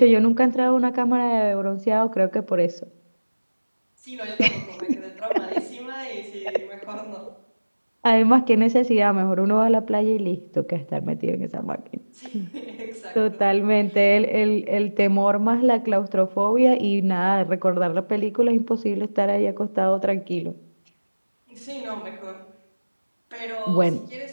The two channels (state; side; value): inverted; both; correlation -1.00